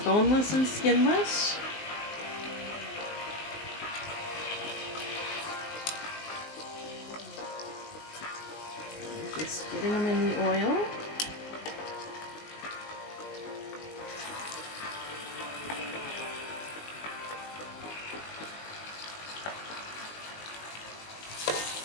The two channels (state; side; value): late; right; 19 ms